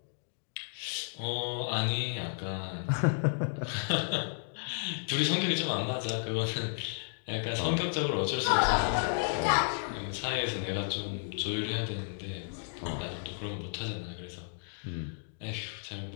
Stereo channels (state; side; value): silent; right; digital silence